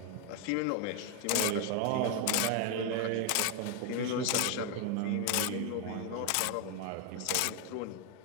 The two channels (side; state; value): both; different; correlation 0.01